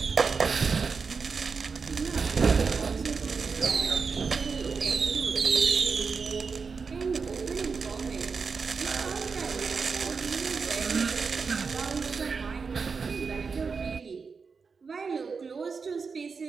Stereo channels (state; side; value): quieter; left; 5.1 dB